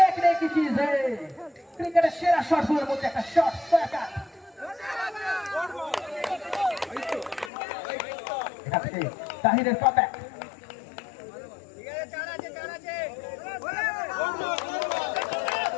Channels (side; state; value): right; drops out; at 7.5 s